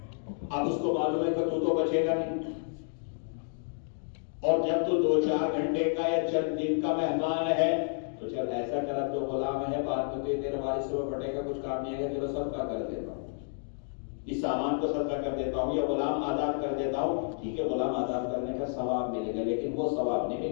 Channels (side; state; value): right; silent; digital silence